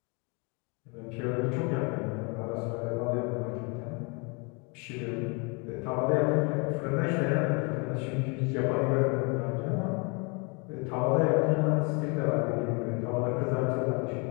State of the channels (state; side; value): quieter; right; 32.5 dB